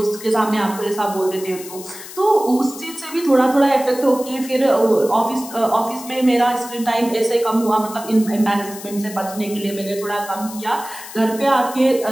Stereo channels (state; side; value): noise; left; hiss, 14 dB below the sound